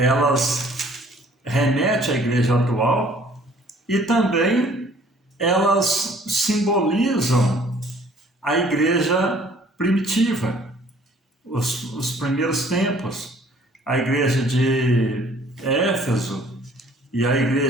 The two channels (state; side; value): normal; both; correlation 0.56